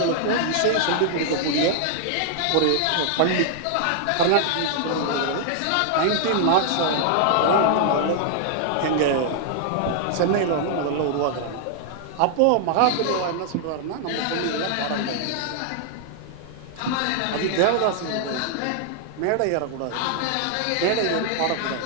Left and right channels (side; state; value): both; different; correlation -0.01